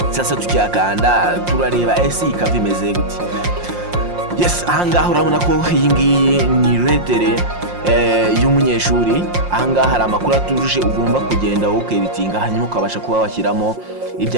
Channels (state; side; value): late; left; 5.6 ms